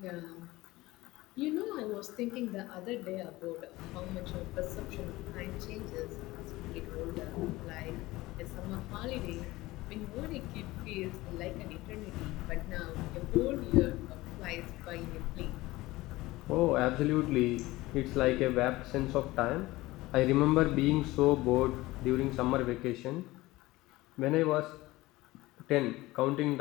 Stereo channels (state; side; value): quieter; right; 19.1 dB